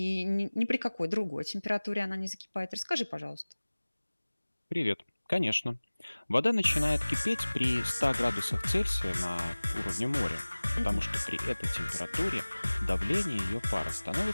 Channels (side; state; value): both; inverted; correlation -1.00